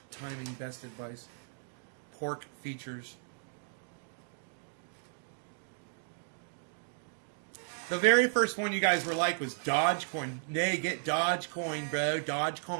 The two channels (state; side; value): silent; left; digital silence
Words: timing best advice. Pork features. The very first one you guys were like was Dogecoin. Nay, get Dogecoin, bro.